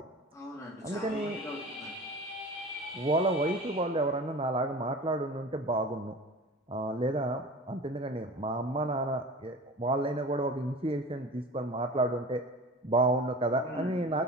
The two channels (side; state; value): both; normal; correlation 0.37